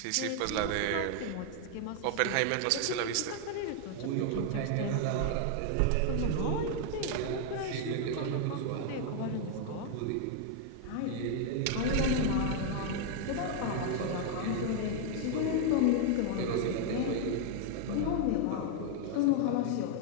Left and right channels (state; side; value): different; both; correlation 0.00